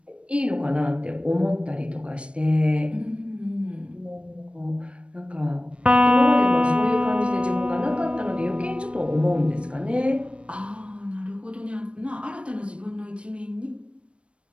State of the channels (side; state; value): left; late; 0.059 ms